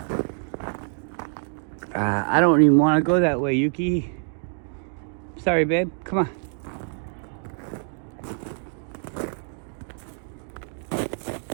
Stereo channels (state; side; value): silent; left; 56 dB below the other